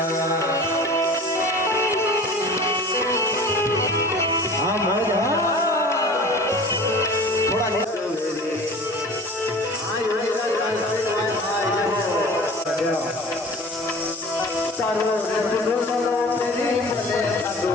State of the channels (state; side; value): normal; both; correlation 0.41